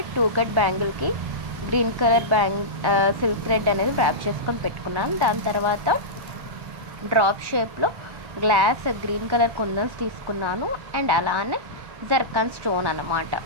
కట్ బ్యాంగిల్కి గ్రీన్ కలర్ సిల్క్ థ్రెడ్ అనేది ర్యాప్ చేసుకొని పెట్టుకున్నాను. దాని తర్వాత డ్రాప్ షేప్లో గ్లాస్ గ్రీన్ కలర్ కుందన్స్ తీసుకున్నాను. అండ్ అలానే జర్కాన్ స్టోన్ అన్నమాట.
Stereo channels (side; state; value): left; late; 1.1 ms